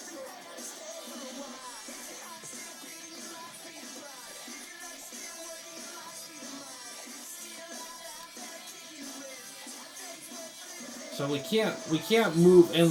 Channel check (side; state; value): both; identical; correlation 1.00